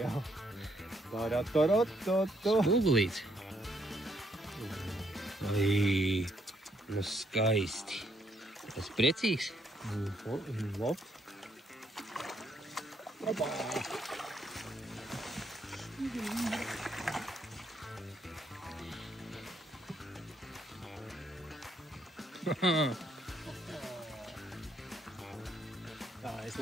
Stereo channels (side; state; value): both; normal; correlation 0.73